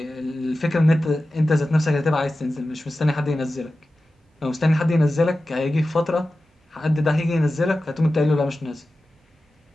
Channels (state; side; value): normal; both; correlation 0.94